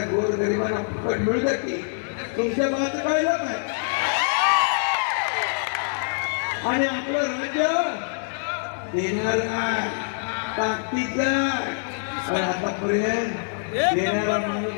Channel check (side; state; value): right; silent; digital silence